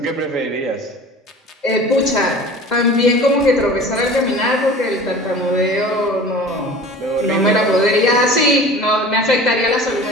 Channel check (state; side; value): normal; both; correlation 0.41